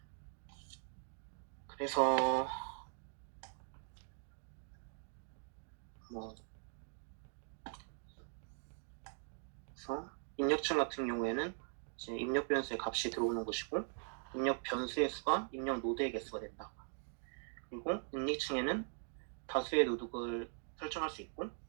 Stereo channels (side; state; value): left; silent; 50 dB below the other